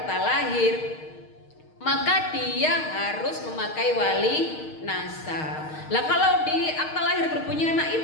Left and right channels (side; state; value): right; late; 6.4 ms